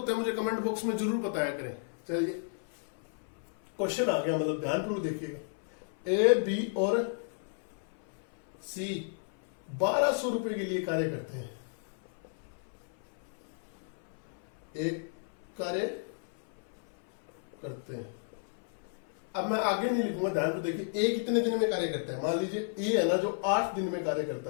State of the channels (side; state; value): right; silent; 56 dB below the other